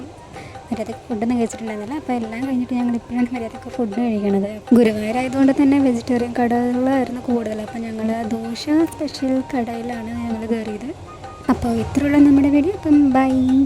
മര്യാദയ്ക്ക് ഫുഡൊന്നും കഴിച്ചിട്ടുണ്ടായിരുന്നില്ല. അപ്പോൾ എല്ലാം കഴിഞ്ഞിട്ട് ഞങ്ങൾ ഇപ്പോഴാണ് മര്യാദയ്ക്ക് ഫുഡ് കഴിക്കണത്. ഗുരുവായൂരായതുകൊണ്ട് തന്നെ വെജിറ്റേറിയൻ കടകളായിരുന്നു കൂടുതൽ. അപ്പോൾ ഞങ്ങൾ ദോശ സ്പെഷ്യൽ കടയിലാണ് ഞങ്ങൾ കയറിയത്. അപ്പോൾ ഇത്രയുള്ള നമ്മുടെ വീഡിയോ. അപ്പം ബൈ.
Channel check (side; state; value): both; identical; correlation 1.00